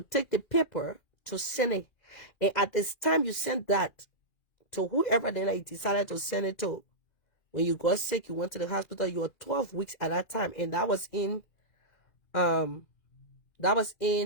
the paper to send it. And at this time you sent that to whoever then you decided to send it to. When you got sick, you went to the hospital, you were 12 weeks at that time. And that was in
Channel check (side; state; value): right; late; 2.4 ms